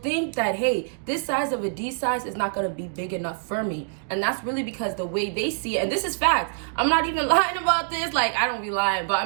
that, hey, this size of a D size is not going to be big enough for me. And that's really because the way they see it, and this is fact, I'm not even lying about this, like I don't be lying, but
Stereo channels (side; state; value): left; silent; digital silence